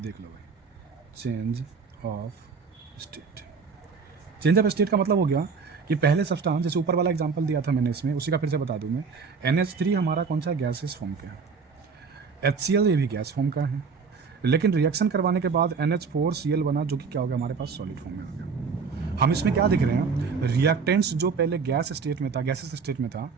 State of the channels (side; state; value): left; quieter; 5.3 dB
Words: लो भाई, चेंज ऑफ स्टेट का मतलब हो गया कि पहले सब्सटेंस, जैसे ऊपर वाला एग्जांपल दिया था मैंने इसमें, उसी का फिर से बता दूं मैं, NH3 हमारा कौन सा गैसेस फॉर्म का है, HCl ये भी गैस फॉर्म का है, लेकिन रिएक्शन करवाने के बाद NH4Cl बना, जो कि क्या हो गया हमारे पास सॉलिड फॉर्म में हो गया। हम इसमें क्या दिख रहे हैं, रिएक्टेंट्स जो पहले गैसेस स्टेट में था,